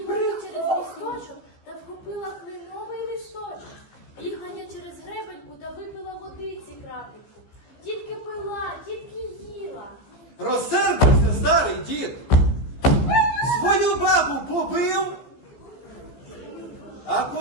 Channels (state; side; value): late; right; 15 ms